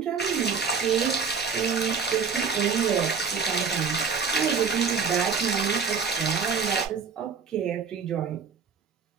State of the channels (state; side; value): quieter; left; 5.7 dB